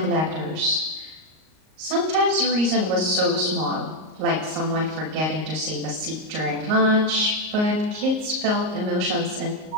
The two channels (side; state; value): left; late; 38 ms